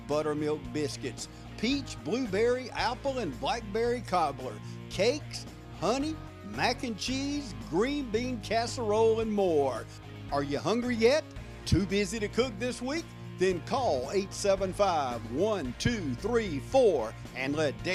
buttermilk biscuits, peach, blueberry, apple, and blackberry cobbler, cakes, honey, mac and cheese, green bean casserole, and more. Are you hungry yet? Too busy to cook this week? Then call 875-1234 and let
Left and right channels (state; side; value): identical; both; correlation 1.00